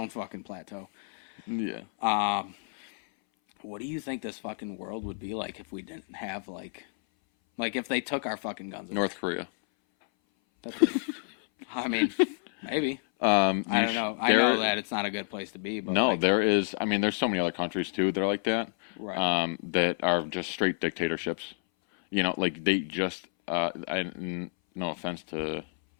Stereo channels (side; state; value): right; silent; 58 dB below the other